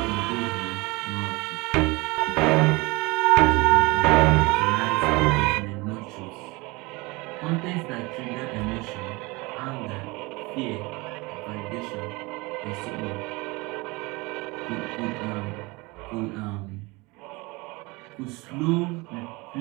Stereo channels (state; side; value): quieter; left; 24.6 dB